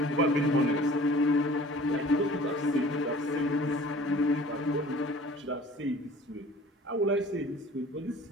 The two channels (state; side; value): normal; both; correlation 0.48